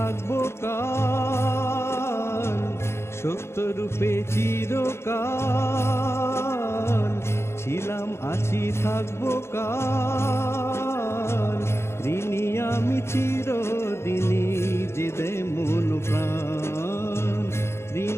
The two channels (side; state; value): right; late; 0.12 ms